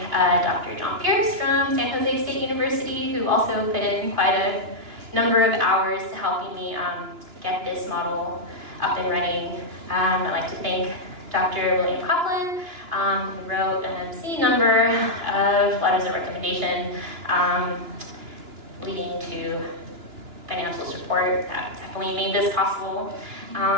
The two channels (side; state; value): left; late; 2.9 ms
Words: Dr. John Pierce from San Jose State University, who also put in quite a number of hours to helping me get this model up and running. I'd like to thank Dr. William Coughlin, who wrote an obscene number of letters of recommendation leading to financial support. That definitely made this possible.